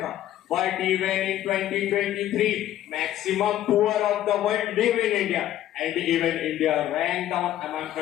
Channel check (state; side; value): quieter; right; 12.7 dB